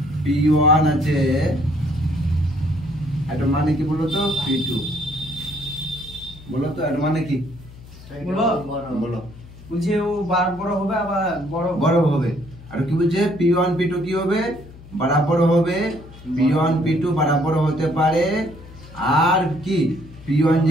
p1 আছে, এটা মানে কি বলো তো p2, বলো তো এটা মানে কি বলো। বুঝে ও বড় হবে আবার বড় হবে। আর কি বলছে p1 p2 কি হবে, বরাবর হবে। p1 p2 বরাবর হতে পারে, আর কি p1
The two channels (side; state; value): left; noise; hum, 19 dB below the sound